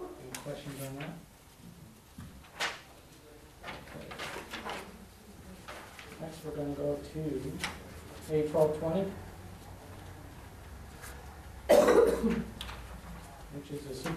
Any questions on that? Okay. Next, we're going to go to A1220, which is the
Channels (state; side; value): identical; both; correlation 1.00